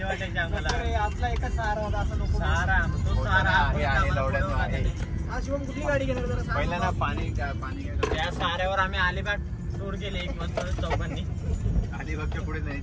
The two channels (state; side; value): identical; both; correlation 1.00